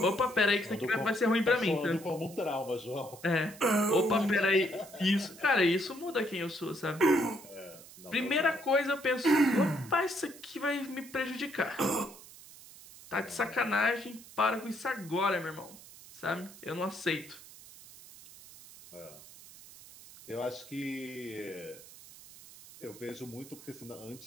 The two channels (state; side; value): noise; right; hiss, 19 dB below the sound